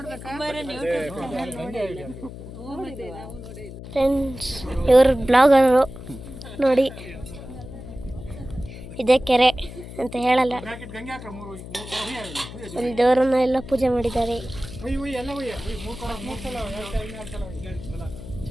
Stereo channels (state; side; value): noise; left; hum, 12 dB below the sound